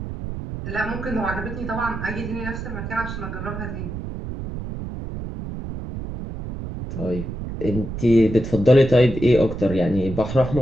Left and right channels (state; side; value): noise; right; rumble, 7 dB below the sound